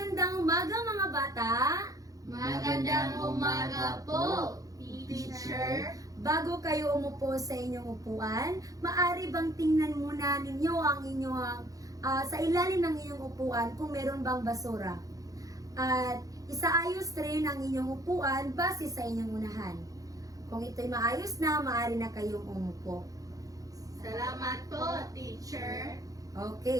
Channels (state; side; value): late; left; 0.17 ms